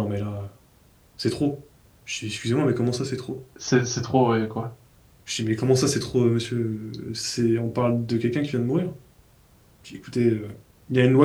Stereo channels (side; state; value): both; identical; correlation 1.00